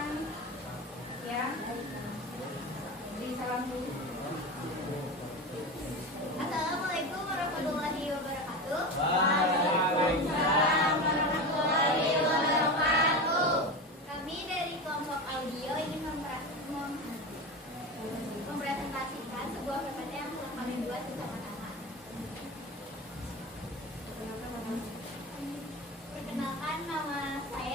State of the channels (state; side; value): normal; both; correlation 0.24